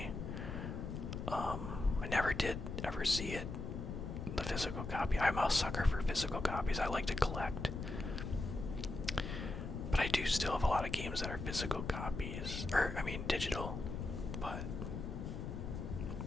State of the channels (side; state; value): left; noise; rumble, 5 dB below the sound